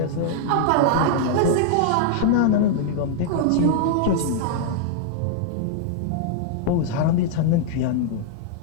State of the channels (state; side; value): different; both; correlation -0.01